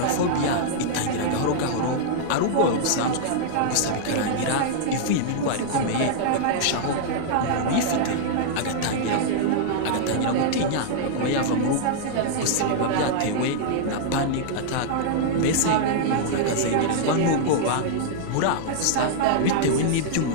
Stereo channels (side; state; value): both; different; correlation -0.01